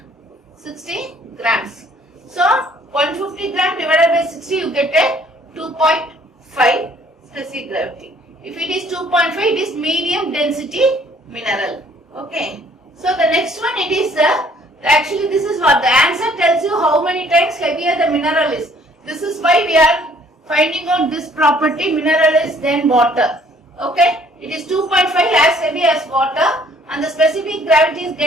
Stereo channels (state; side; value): normal; both; correlation 0.59